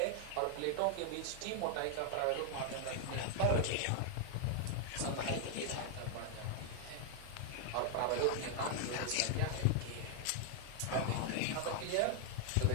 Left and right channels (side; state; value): both; different; correlation 0.00